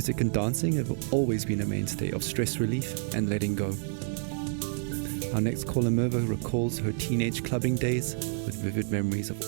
and dancing have always been a mainstay of stress relief and letting go. Our next caller, Merva, recalls her teenage clubbing days with vivid memories of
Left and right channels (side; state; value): left; silent; digital silence